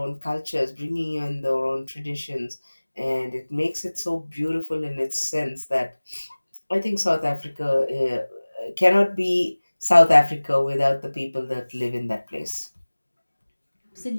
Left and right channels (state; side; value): inverted; both; correlation -1.00